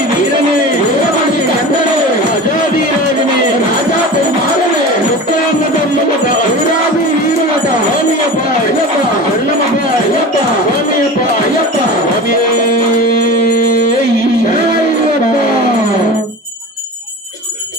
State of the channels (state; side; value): normal; both; correlation 0.33